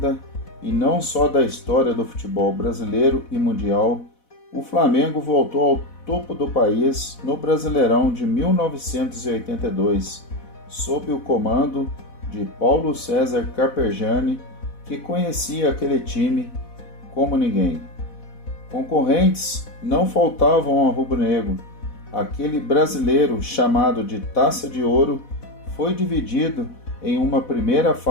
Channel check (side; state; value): right; late; 4.1 ms